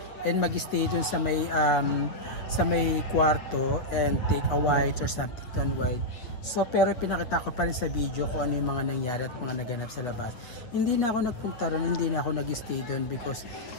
and mag-stay dun sa may kwarto and take a white or something to unwind. So pero pinakita ko pa rin sa video kung ano yung mga nangyari at mga naganap sa labas. Hindi na ako nagpunta ron, hindi na ako nag-stay dun because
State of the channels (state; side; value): late; right; 8.4 ms